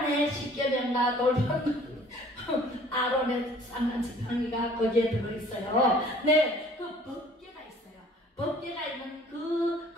십계명과 돌판. 아론의 쌍난 지팡이가 거기에 들어있어요. 네, 그 법궤가 있어요. 법궤가 있는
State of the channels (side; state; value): both; normal; correlation 0.53